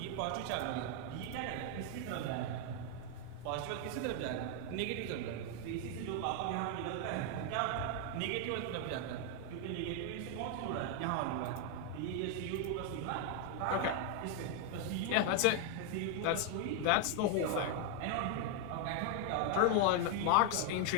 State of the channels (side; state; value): both; different; correlation 0.00